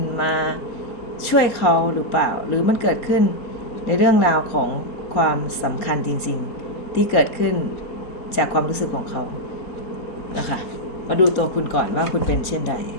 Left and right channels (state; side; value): late; right; 4.1 ms